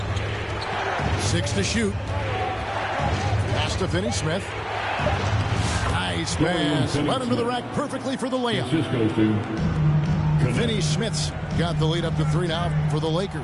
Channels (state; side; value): identical; both; correlation 1.00